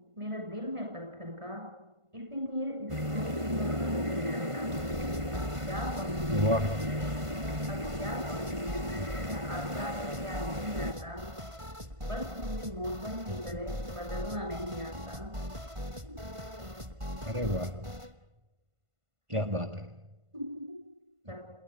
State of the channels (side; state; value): left; late; 1.5 ms